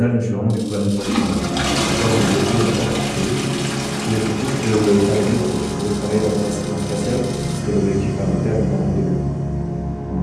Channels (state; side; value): identical; both; correlation 1.00